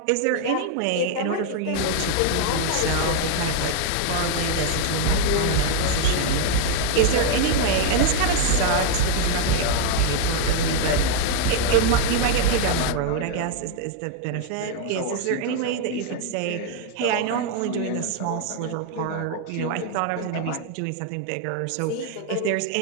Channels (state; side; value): different; both; correlation 0.00